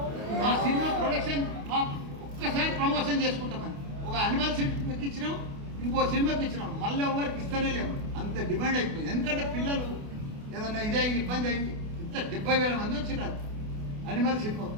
మా సినిమా ప్రొడక్షన్ ఒక్కసారి ప్రమోషన్ చేసుకుంటామని ఒక అనిమల్ సినిమాకి ఇచ్చినాం, ఇంకో సినిమాకి ఇచ్చినాం, మళ్ళీ ఎవరికి ఇస్తూనే లేవు. అంత డిమాండ్ అయిపోయింది. ఎందుకంటే పిల్లలు ఏదన్నా ఇదే ఇబ్బంది అయింది. ఇంత 70,000 మంది వచ్చినారు అనిమల్ సినిమా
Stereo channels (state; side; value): late; left; 28 ms